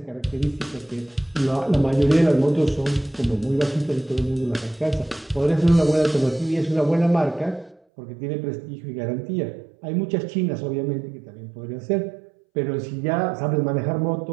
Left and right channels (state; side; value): drops out; left; at 7.8 s